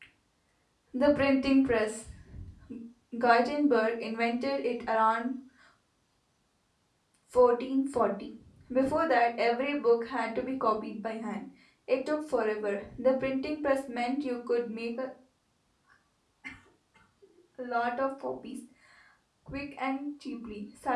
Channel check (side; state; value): both; identical; correlation 1.00